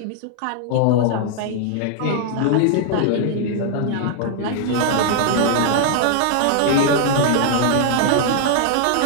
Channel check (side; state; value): both; different; correlation 0.00